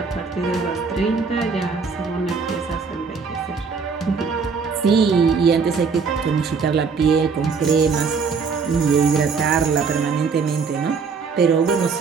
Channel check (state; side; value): quieter; left; 5.3 dB